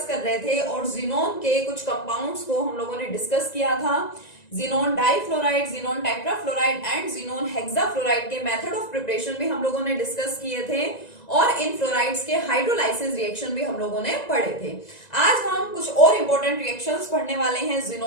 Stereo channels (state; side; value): late; right; 1.9 ms